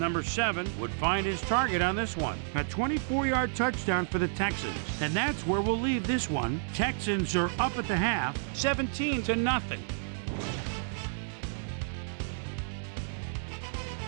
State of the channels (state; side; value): silent; left; 57 dB below the other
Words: 7 would find his target on this one. A 24-yard touchdown for the Texans. And that's where we'll leave this one. Texans are up at the half, 17-0.